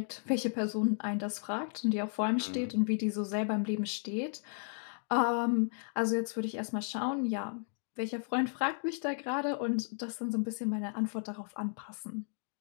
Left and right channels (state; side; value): silent; right; 55 dB below the other